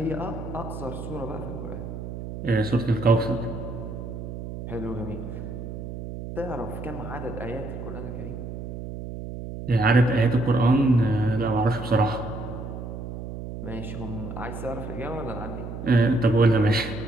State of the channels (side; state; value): right; noise; hum, 8 dB below the sound